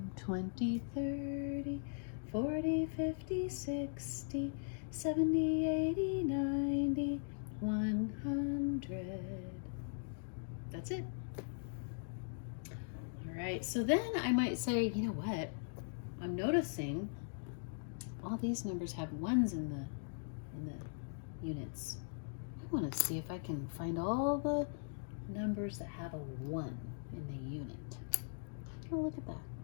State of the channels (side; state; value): right; silent; digital silence